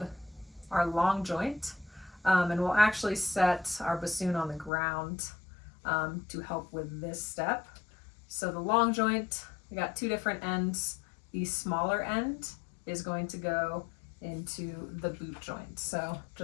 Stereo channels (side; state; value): right; drops out; at 4.7 s